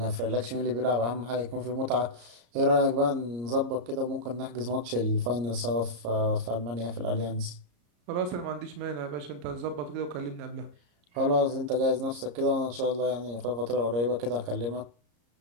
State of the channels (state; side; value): late; left; 34 ms